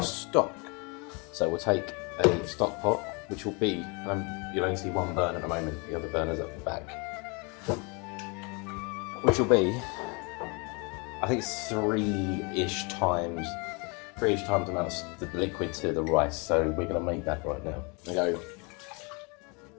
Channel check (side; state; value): right; quieter; 31.2 dB